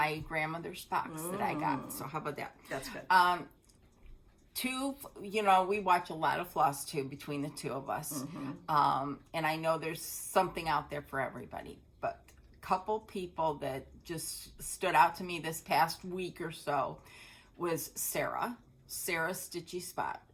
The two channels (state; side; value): identical; both; correlation 1.00